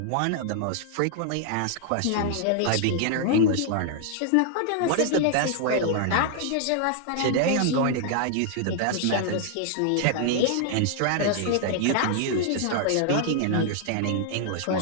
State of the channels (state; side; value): different; both; correlation -0.01